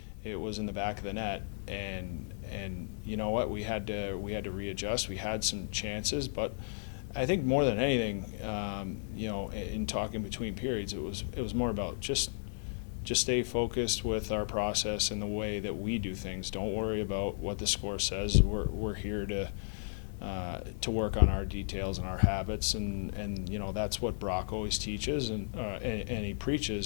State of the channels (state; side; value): silent; right; digital silence